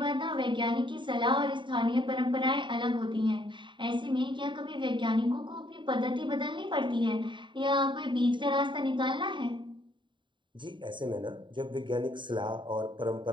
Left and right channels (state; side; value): late; left; 0.23 ms